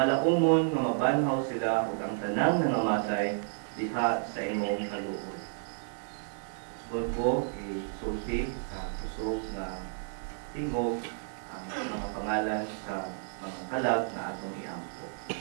nga mabanhaw sila ug ang tanang nangamatay diha sa imong kaluoy. Subod ko isulti sa kusog nga tingog ang mga pangalan sa mga kalag na atong iampo.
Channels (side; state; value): left; silent; digital silence